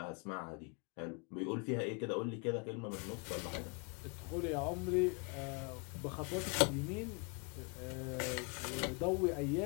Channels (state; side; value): quieter; right; 34.0 dB